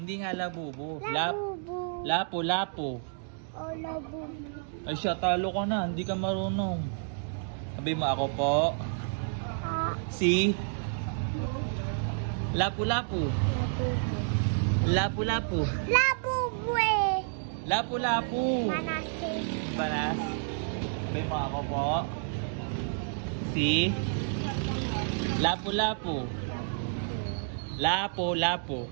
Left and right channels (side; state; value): left; silent; digital silence